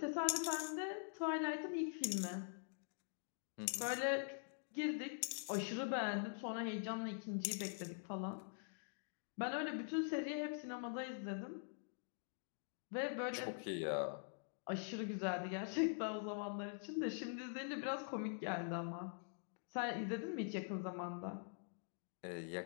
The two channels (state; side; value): silent; right; digital silence